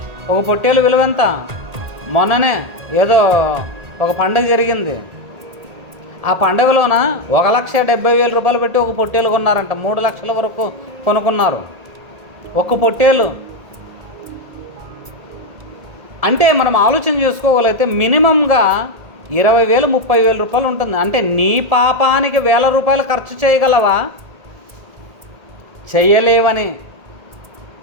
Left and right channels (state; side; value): late; left; 1.8 ms